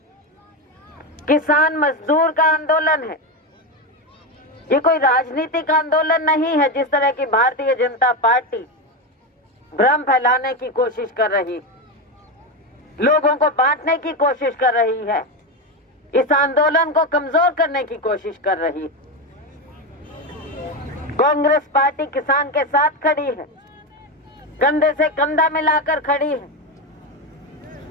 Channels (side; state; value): both; normal; correlation 0.13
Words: किसान मजदूर का आंदोलन है। ये कोई राजनीतिक आंदोलन नहीं है जिस तरह की भारतीय जनता पार्टी भ्रम फैलाने की कोशिश कर रही, लोगों को बांटने की कोशिश कर रही है, इस आंदोलन को कमजोर करने की कोशिश कर रही। कांग्रेस पार्टी किसान के साथ खड़ी है, कंधे से कंधा मिलाकर खड़ी है।